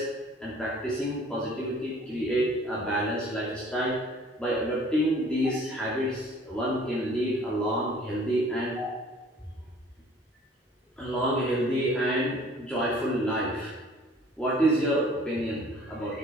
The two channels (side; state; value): both; normal; correlation 0.52